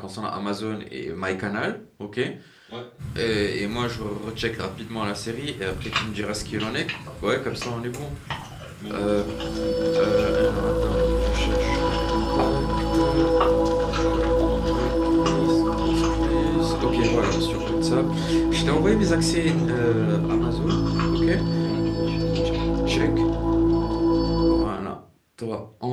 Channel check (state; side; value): identical; both; correlation 1.00